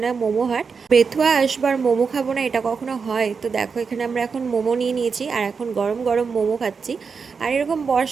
মোমো হাট। বেথুয়া আসবার মোমো খাবো না এটা কখনো হয়? তো দেখো, এখানে আমরা এখন মোমো নিয়ে নিয়েছি আর এখন গরম গরম মোমো খাচ্ছি। আর এরকম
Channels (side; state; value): left; quieter; 5.4 dB